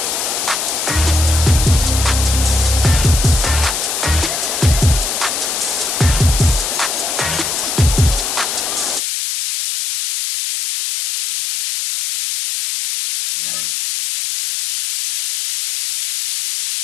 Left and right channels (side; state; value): left; noise; hiss, 2 dB below the sound